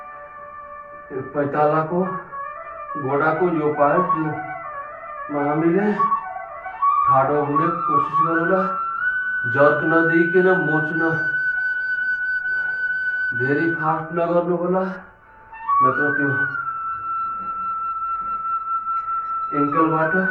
पैतालाको घोडाको यो पार्टमा हामीले ठाडो हुने कोसिस गरौँला। जर्क नदिइकन मोच्न धेरै फास्ट नगर्नु होला, नत्र त्यो एङ्कलबाट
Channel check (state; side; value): identical; both; correlation 1.00